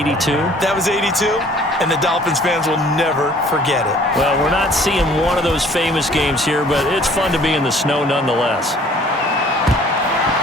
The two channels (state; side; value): normal; both; correlation 0.55